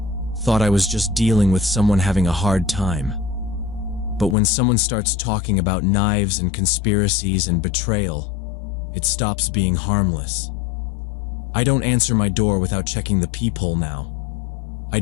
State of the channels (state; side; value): drops out; right; at 4.4 s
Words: thought I was just dealing with someone having a hard time. But when someone starts talking about knives and conspiracies and betrayal, it stops being harmless. I don't answer my door without checking the peephole now. I